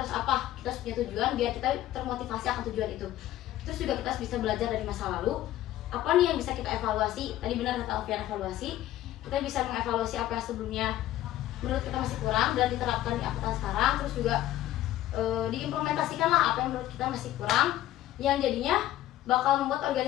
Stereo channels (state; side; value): quieter; right; 13.9 dB